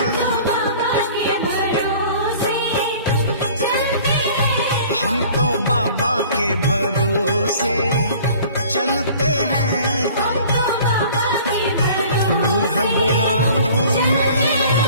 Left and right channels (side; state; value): both; inverted; correlation -0.49